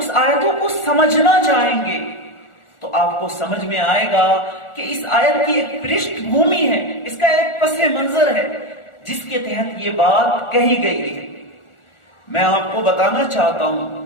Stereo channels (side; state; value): right; late; 1.4 ms